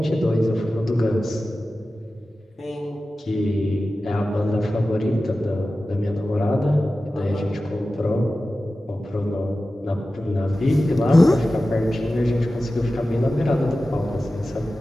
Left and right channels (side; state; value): both; normal; correlation 0.95